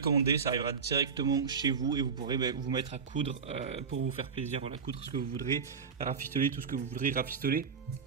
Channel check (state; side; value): quieter; left; 5.8 dB